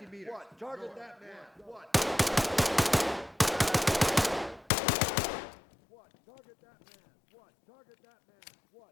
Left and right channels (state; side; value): drops out; right; at 4.7 s